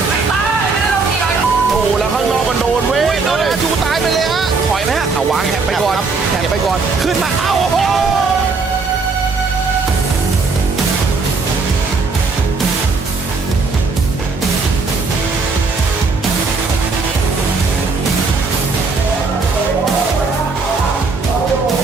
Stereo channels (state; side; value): quieter; left; 4.3 dB